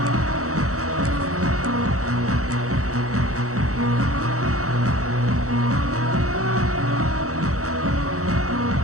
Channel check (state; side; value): late; left; 0.65 ms